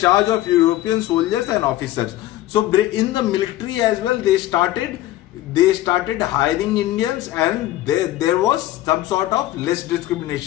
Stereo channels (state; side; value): quieter; right; 15.0 dB